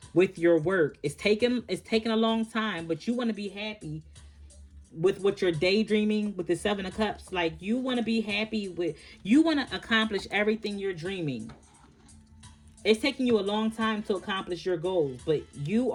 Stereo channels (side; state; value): both; identical; correlation 1.00